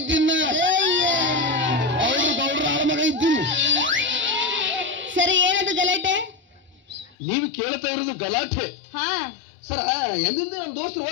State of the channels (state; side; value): drops out; right; at 7.2 s